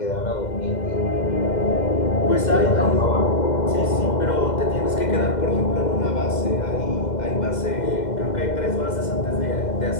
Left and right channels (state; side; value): late; right; 2.1 ms